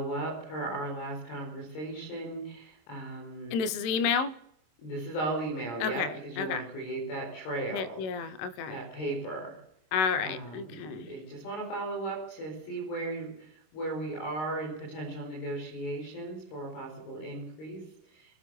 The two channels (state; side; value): late; right; 27 ms